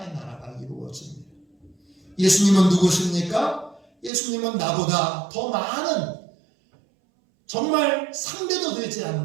나라가 이루어집니다. 예수님은 누구십니까? 예수님은 나보다 더 많은, 정말 상대도 되지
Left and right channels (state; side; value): drops out; left; at 4.1 s